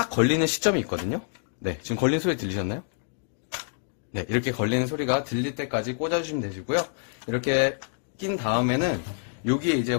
걸리는 시점이 있거든요. 네, 지금 걸린 소리 들리셨나요? 네, 이렇게 걸리는 소리가 들릴 때까지 꽂아주시면 되시고요. 이렇게 낀 다음에는 여기에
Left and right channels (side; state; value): right; silent; digital silence